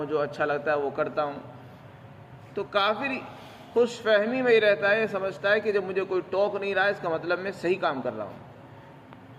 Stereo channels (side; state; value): both; identical; correlation 1.00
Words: جو اچھا لگتا ہے وہ کرتا ہوں۔ تو کافر خوش فہمی میں ہی رہتا ہے، سمجھتا ہے کہ جب مجھے کوئی ٹوک نہیں رہا ہے اس کا مطلب میں صحیح کام کر رہا ہوں۔